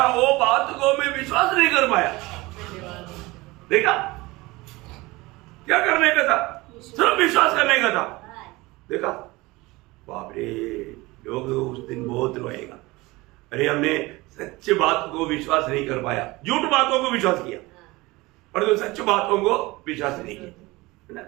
वो बात को मैं विश्वास नहीं कर पाया। देखा, क्या करने का था, सिर्फ विश्वास करने का था। देखा, बाप रे, लोग उस दिन बहुत रोएगा, अरे हमने सच्ची बात को विश्वास नहीं कर पाया, झूठ बातों को विश्वास किया, पर तो सच्ची बातों को विश्वास नहीं किया।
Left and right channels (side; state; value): left; quieter; 21.7 dB